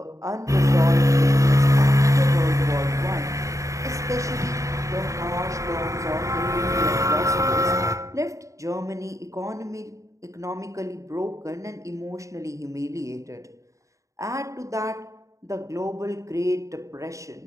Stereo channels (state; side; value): late; left; 0.15 ms